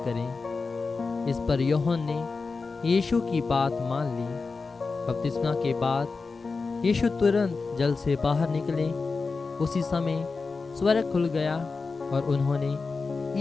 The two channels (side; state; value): right; quieter; 4.3 dB